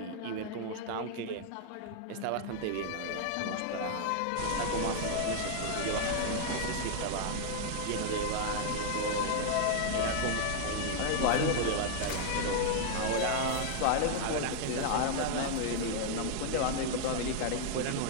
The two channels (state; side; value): different; both; correlation -0.01